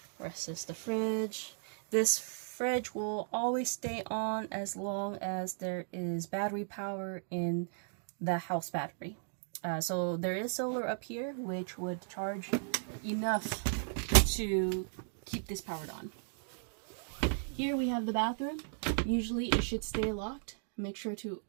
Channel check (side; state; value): left; silent; digital silence